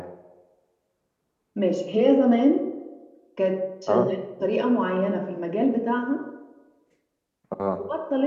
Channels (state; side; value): identical; both; correlation 1.00